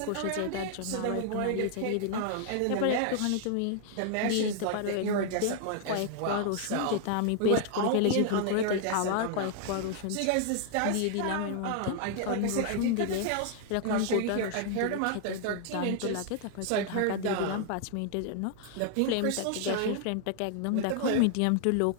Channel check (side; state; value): both; different; correlation 0.00